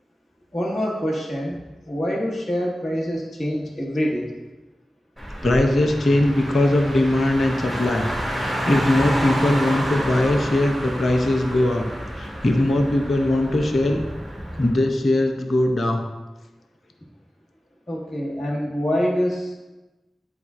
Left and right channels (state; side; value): normal; both; correlation 0.93